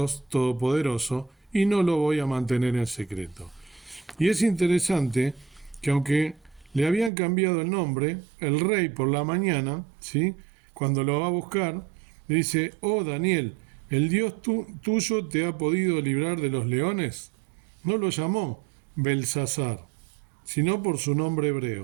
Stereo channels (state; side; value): drops out; left; at 7.1 s